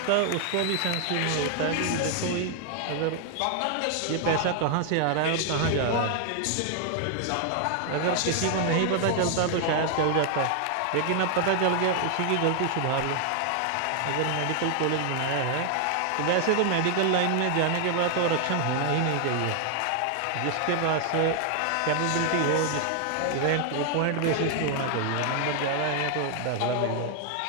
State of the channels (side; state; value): both; different; correlation 0.00